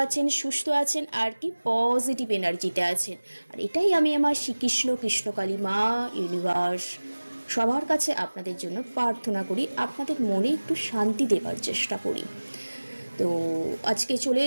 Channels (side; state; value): both; inverted; correlation -1.00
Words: আছেন, সুস্থ আছেন আর কি পজিটিভ এনার্জিতে আছেন। আর এটাই আমি আমার শ্রীকৃষ্ণ কৃষ্ণকালী মা ইউনিভার্স সবার কাছে আপনাদের জন্য প্রার্থনা করি, আপনাদের মনে একটু শান্তি দেবার চেষ্টা করি। তো আজকে চলে